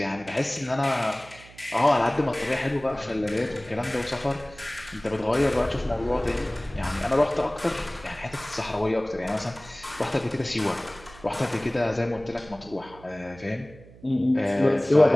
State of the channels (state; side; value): noise; right; hum, 21 dB below the sound